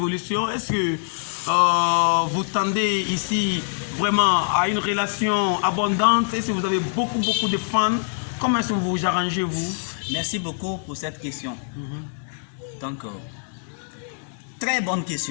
Est-ce que vous tendez ici vraiment à une relation abondante? Est-ce que vous avez beaucoup de fans? Comment est-ce que vous vous arrangez, vous? Merci beaucoup pour cette question. Donc, très bonne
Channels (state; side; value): silent; right; digital silence